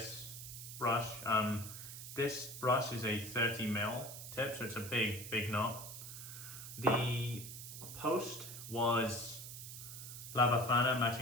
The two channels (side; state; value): right; noise; hiss, 10 dB below the sound